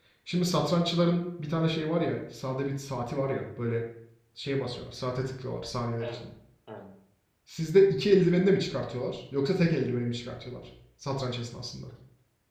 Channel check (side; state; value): both; identical; correlation 1.00